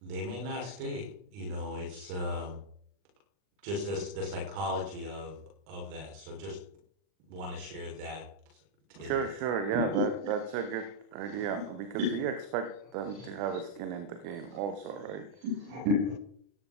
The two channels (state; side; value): late; left; 40 ms